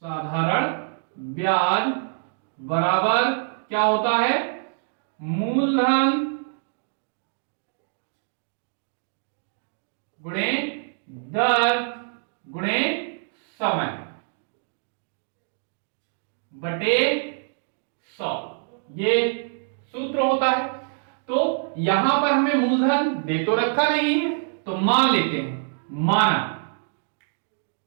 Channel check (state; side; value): silent; left; digital silence